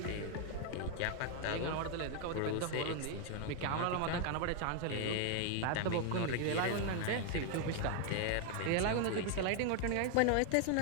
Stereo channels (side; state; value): both; different; correlation 0.00